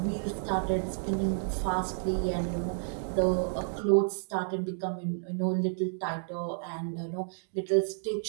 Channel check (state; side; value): silent; left; digital silence